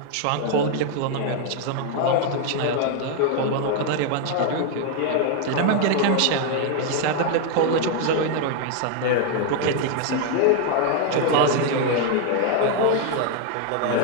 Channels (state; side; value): different; both; correlation 0.00